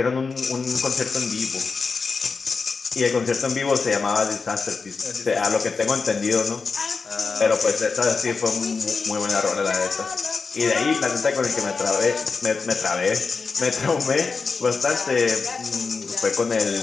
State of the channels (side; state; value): right; quieter; 4.7 dB